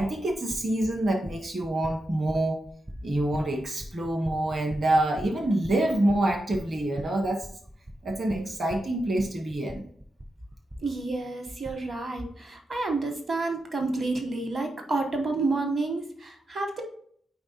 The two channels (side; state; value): both; normal; correlation 0.88